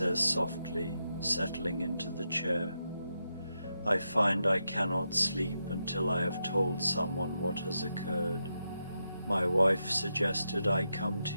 softly, settling into the chair. "I find I cannot sleep until I have told someone what has occurred. My wife suggested I come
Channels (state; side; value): inverted; both; correlation -0.86